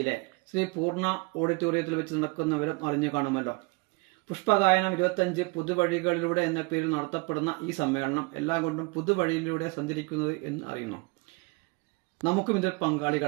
ശ്രീ പൂർണ്ണ ഓഡിറ്റോറിയത്തിൽ വെച്ച് നടക്കുന്നവരും അറിഞ്ഞു കാണുമല്ലോ. പുഷ്പഗായനം 25 പുതുവഴികളിലൂടെ എന്ന പേരിൽ നടത്തപ്പെടുന്ന ഈ സമ്മേളനം എല്ലാം കൊണ്ടും പുതുവഴിയിലൂടെ സഞ്ചരിക്കുന്നത് എന്ന് അറിയുന്നു. നമുക്കും ഇതിൽ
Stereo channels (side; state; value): left; quieter; 28.4 dB